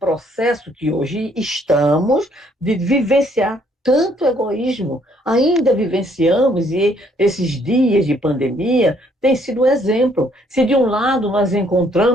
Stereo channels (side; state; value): both; normal; correlation 0.66